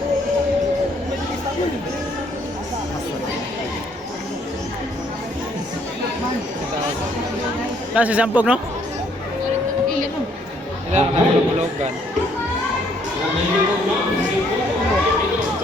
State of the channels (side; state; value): both; normal; correlation 0.66